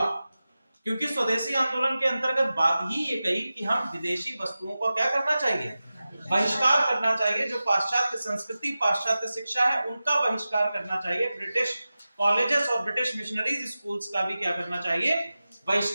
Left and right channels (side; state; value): both; inverted; correlation -0.95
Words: क्योंकि स्वदेशी आंदोलन के अंतर्गत बात ही ये कही कि हम विदेशी वस्तुओं को क्या करना चाहिए? बहिष्कार करना चाहिए। जो पाश्चात्य संस्कृति, पाश्चात्य शिक्षा है, उनका बहिष्कार करना चाहिए। ब्रिटिश कॉलेजेस और ब्रिटिश मिशनरीज स्कूल्स का भी क्या करना चाहिए?